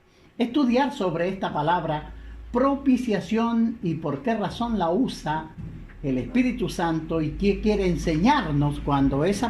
estudiar sobre esta palabra propiciación y por qué razón la usa el Espíritu Santo y qué quiere enseñarnos cuando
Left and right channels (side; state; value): both; identical; correlation 1.00